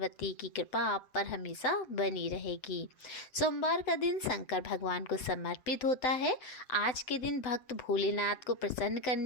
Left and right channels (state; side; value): late; right; 7.9 ms